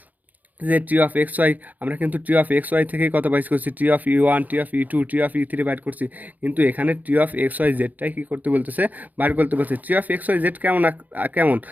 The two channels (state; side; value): late; left; 0.081 ms